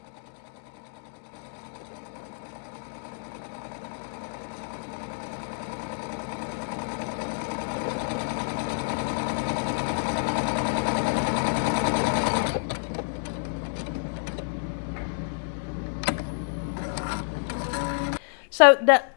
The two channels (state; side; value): silent; right; 59 dB below the other